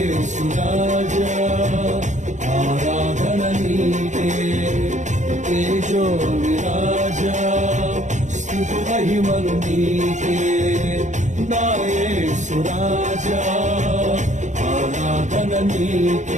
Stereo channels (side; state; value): left; late; 0.35 ms